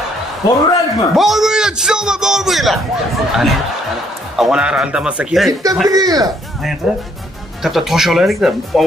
Boruraylikmi? Bormaylar, chisoma bormaylar. Ana. Avvalar aldamasa kerak. Bitamda kelinglar. Qayerda? Katta tosh olaylik-da,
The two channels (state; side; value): normal; both; correlation 0.67